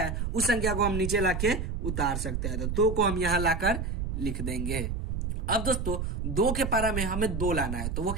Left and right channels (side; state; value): right; noise; rumble, 2 dB below the sound